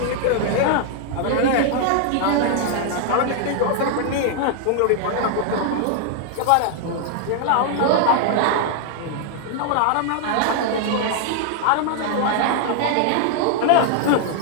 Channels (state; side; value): different; both; correlation -0.01